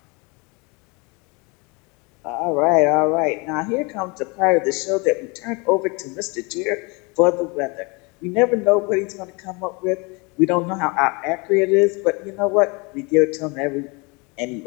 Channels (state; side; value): quieter; right; 29.0 dB